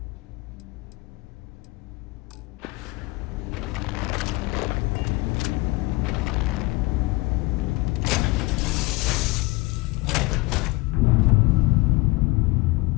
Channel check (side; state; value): right; quieter; 22.6 dB